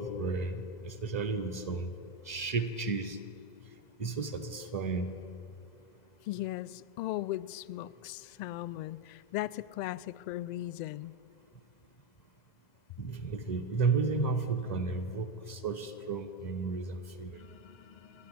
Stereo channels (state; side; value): late; right; 2.0 ms